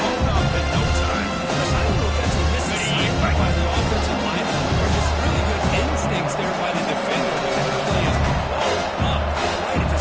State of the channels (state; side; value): identical; both; correlation 1.00